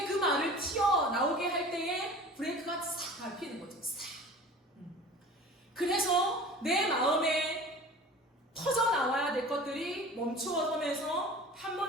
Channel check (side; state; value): both; normal; correlation 0.40